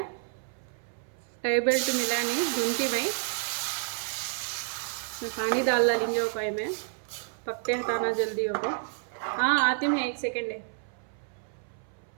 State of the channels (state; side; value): silent; left; 57 dB below the other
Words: टाई बेल्ट मिला नहीं, धुनती मैं। पानी डाल डालेंगे वो पाई में, पत्ते हटाना जल्दी होगा। हाँ आती मैं, 1 सेकेंड है।